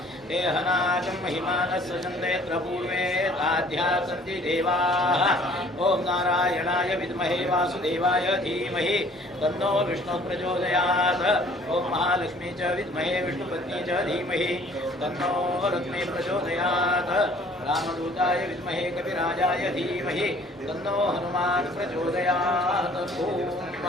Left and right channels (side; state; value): both; normal; correlation 0.54